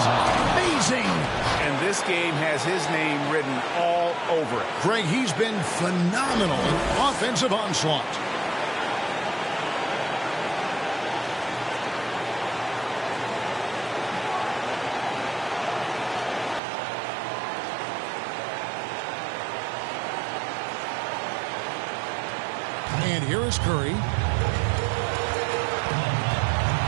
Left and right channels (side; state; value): left; drops out; at 16.6 s